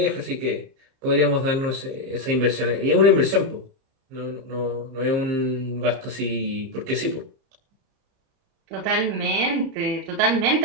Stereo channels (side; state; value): left; late; 30 ms